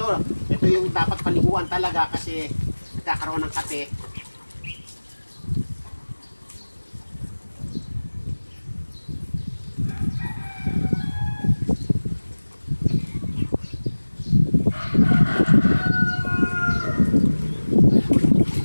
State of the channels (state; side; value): inverted; both; correlation -1.00